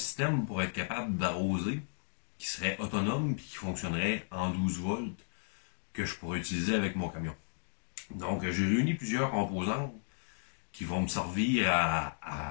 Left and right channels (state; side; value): silent; right; digital silence